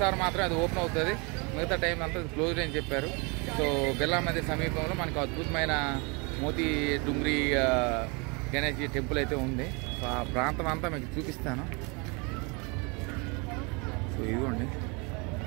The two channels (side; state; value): left; quieter; 30.6 dB